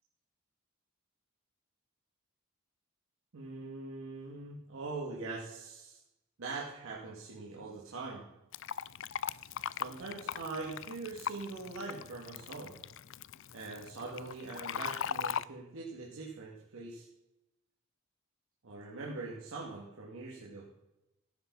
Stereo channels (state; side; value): normal; both; correlation -0.07